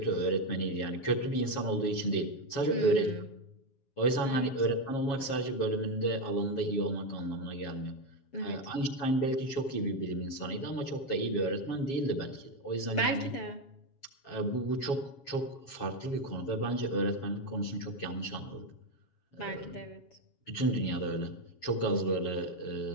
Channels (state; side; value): late; right; 7.3 ms